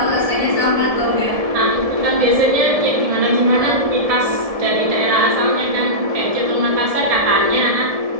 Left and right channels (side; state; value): left; late; 1.7 ms